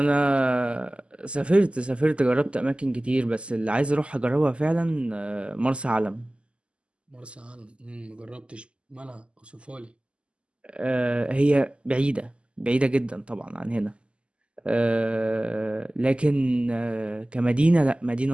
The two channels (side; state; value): left; late; 0.053 ms